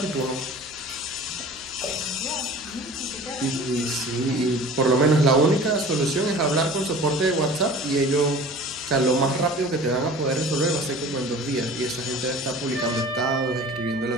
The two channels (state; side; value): noise; right; hum, 26 dB below the sound